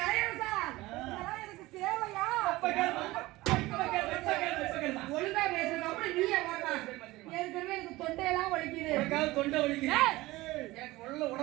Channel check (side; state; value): left; quieter; 19.3 dB